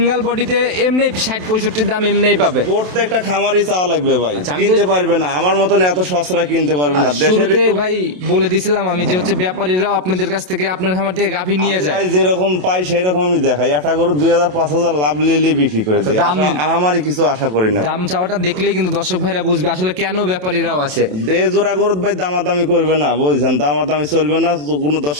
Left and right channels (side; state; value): left; late; 27 ms